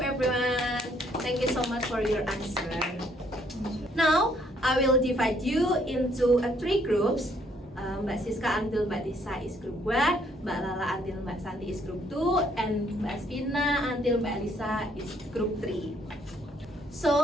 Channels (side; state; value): both; normal; correlation 0.67